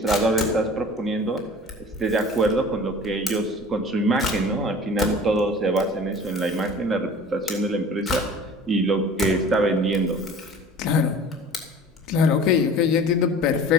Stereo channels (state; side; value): normal; both; correlation 0.43